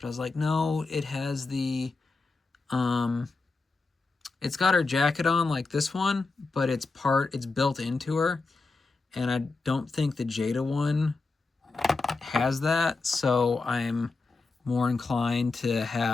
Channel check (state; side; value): quieter; right; 3.8 dB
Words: I was like, no, it has the, it's got her jacket on like this one, but it's built into her, and I don't think the Jada one has that, so I'm more inclined to